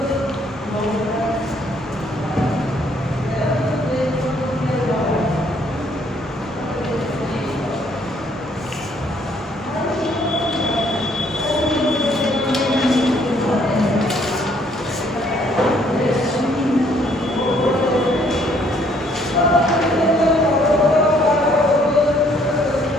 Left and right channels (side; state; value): both; normal; correlation 0.65